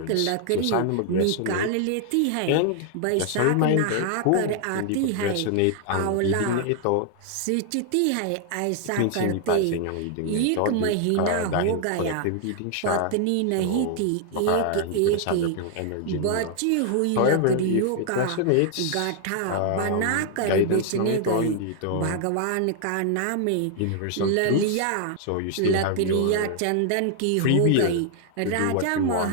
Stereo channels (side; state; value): both; different; correlation 0.00